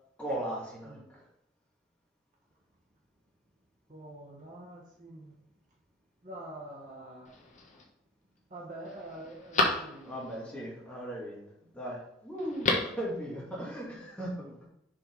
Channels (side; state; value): both; normal; correlation 0.31